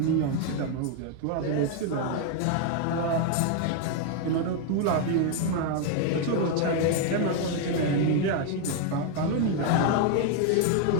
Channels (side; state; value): both; different; correlation 0.00